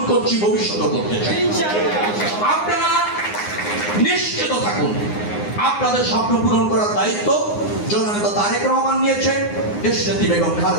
করছি, ভবিষ্যতে করতে চাই। আপনারা নিশ্চিত থাকুন আপনাদের স্বপ্ন পূরণ করার দায়িত্ব জননেতা তারেক রহমান নিয়েছে, দেশনেত্রী বেগম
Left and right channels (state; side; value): late; right; 9.7 ms